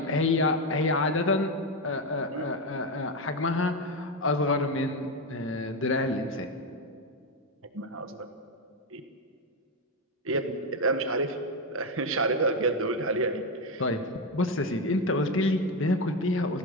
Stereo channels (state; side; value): normal; both; correlation 0.11